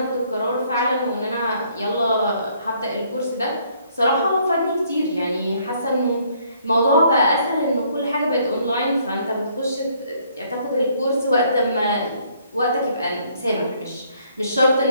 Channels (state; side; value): inverted; both; correlation -0.66